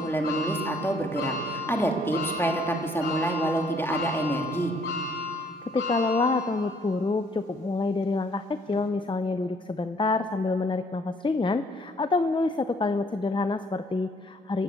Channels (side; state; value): both; normal; correlation 0.63